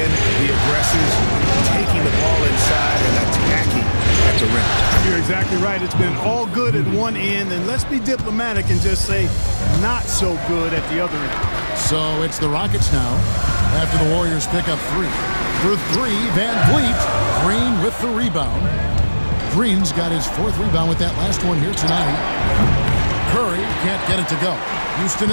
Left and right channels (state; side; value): inverted; both; correlation -1.00